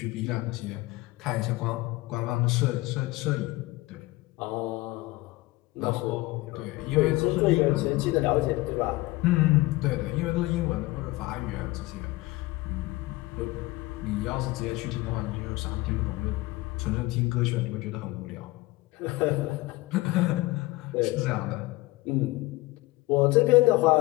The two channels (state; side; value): quieter; right; 20.5 dB